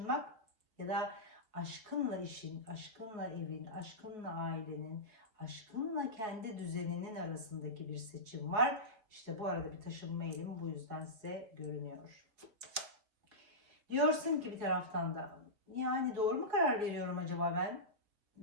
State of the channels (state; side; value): late; left; 4.7 ms